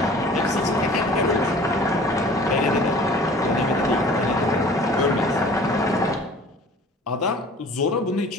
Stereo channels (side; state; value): both; normal; correlation 0.47